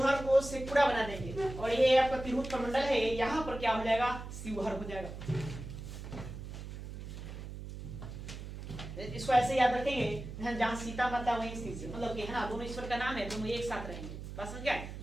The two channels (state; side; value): noise; right; hum, 9 dB below the sound